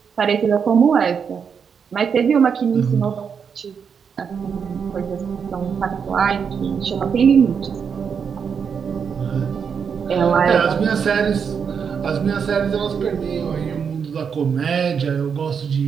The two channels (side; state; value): left; quieter; 6.7 dB